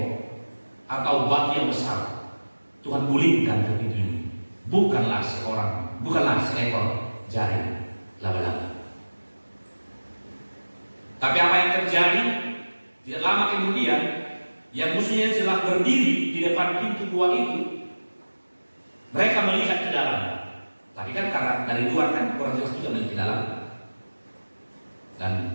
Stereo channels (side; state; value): both; inverted; correlation -1.00